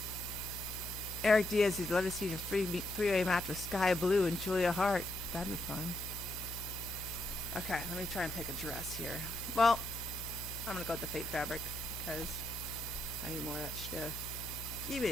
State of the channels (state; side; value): noise; left; hum, 11 dB below the sound